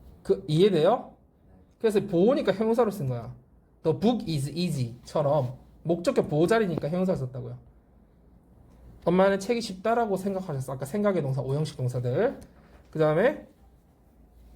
그 이해돼요? 그래서 보호니까 형용사로 쓴 거야. The book is easy처럼 목적격 보호자리니까 형용사를 썼다고요. 엄마는 책이 쉽다라고 생각하셨어. 아까 생각의 동사 5형식 동사들. 그 다음에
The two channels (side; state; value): both; identical; correlation 1.00